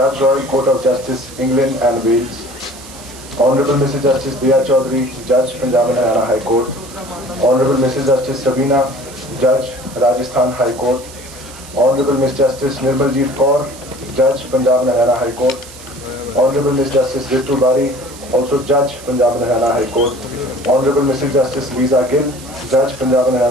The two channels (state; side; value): noise; right; hiss, 18 dB below the sound